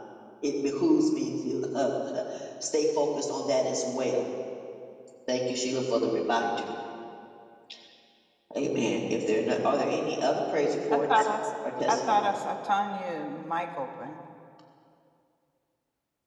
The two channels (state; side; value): identical; both; correlation 1.00